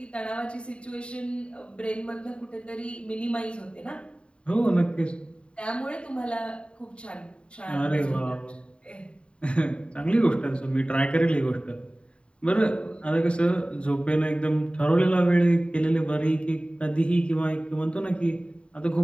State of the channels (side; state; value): right; late; 0.056 ms